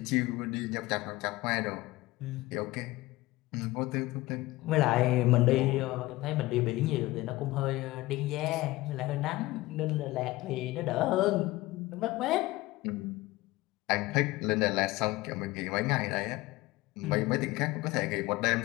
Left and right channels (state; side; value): quieter; right; 19.3 dB